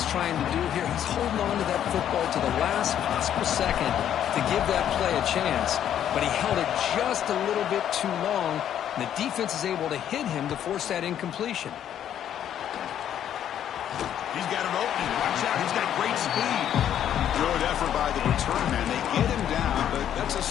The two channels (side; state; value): right; quieter; 10.2 dB